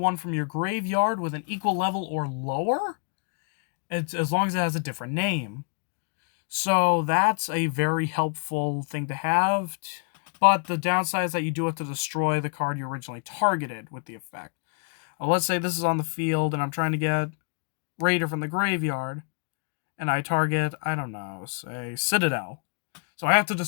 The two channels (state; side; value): quieter; right; 38.8 dB